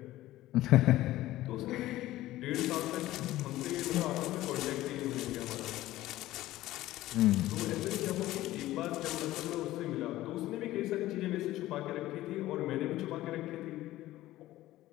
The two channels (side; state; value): right; quieter; 15.8 dB